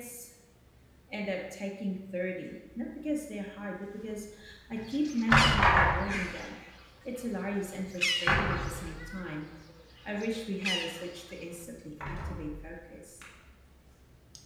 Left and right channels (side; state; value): both; identical; correlation 1.00